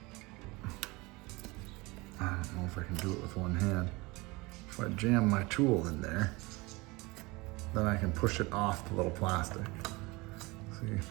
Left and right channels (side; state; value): left; quieter; 24.0 dB